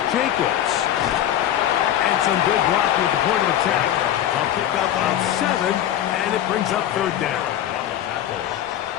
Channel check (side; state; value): right; quieter; 11.4 dB